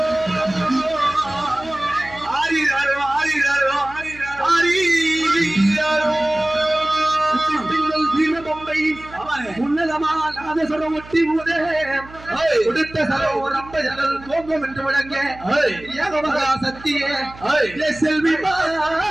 ஒட்டி மூதே கொடுத்த சரம் ரொம்ப ஜனல் தோங்கும் என்று விளங்க ஏகமகா சத்தியே செல்வி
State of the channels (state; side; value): noise; right; hum, 19 dB below the sound